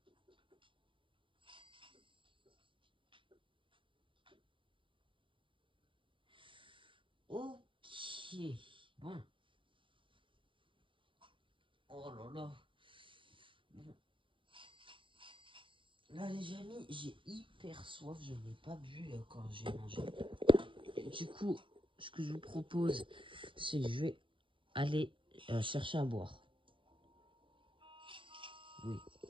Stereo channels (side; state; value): left; late; 0.25 ms